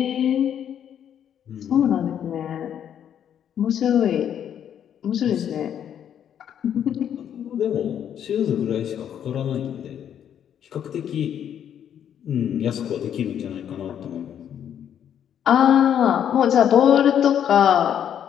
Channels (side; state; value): right; quieter; 9.4 dB